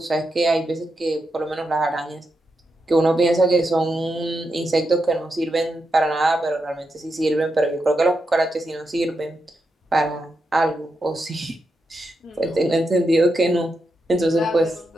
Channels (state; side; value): normal; both; correlation 0.86